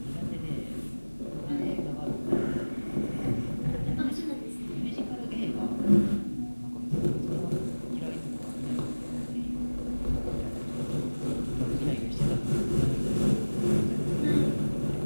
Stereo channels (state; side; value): inverted; both; correlation -1.00